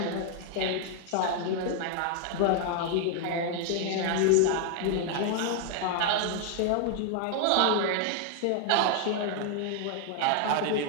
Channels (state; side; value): different; both; correlation 0.00